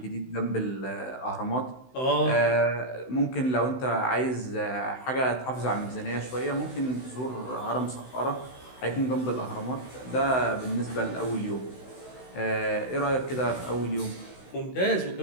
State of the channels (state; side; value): late; right; 16 ms